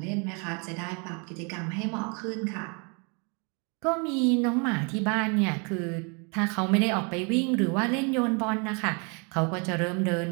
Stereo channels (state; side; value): quieter; left; 34.3 dB